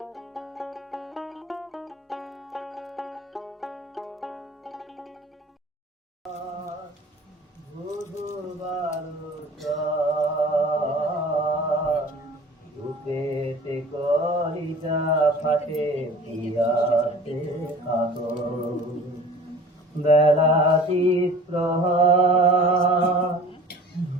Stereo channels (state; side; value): normal; both; correlation 0.44